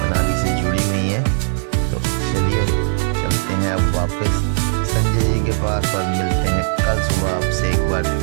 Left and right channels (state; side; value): silent; left; digital silence